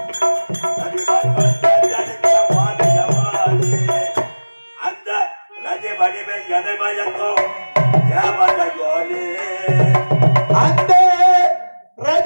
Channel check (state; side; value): inverted; both; correlation -1.00